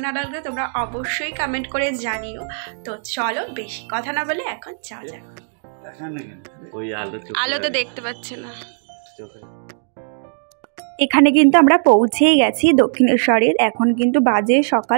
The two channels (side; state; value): left; silent; digital silence